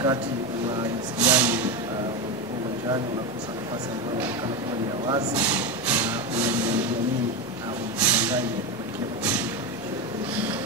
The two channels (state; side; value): normal; both; correlation 0.15